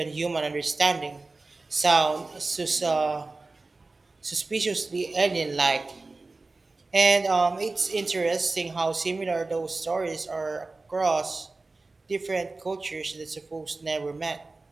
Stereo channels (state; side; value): quieter; left; 3.4 dB